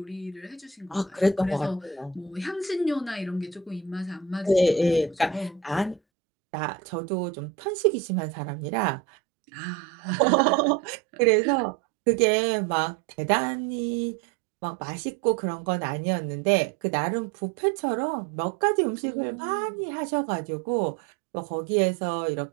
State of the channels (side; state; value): left; drops out; at 6.0 s